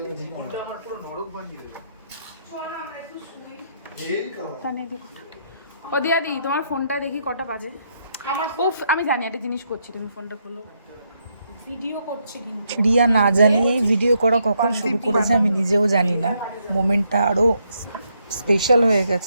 ও দিয়াদি তোমার ফোনটা দেখি কটা বাজে। উফ আমি জানি একটা জিনিস করছি, তুমি ফোনটা খোলো। ভিডিও করছি কিন্তু রিয়া না জানিয়েই ভিডিও করা কখন শুরু করেছে আমি নিজেও জানি না। মোমেন্টটা আরো স্পেশাল হয়ে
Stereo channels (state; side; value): inverted; both; correlation -0.76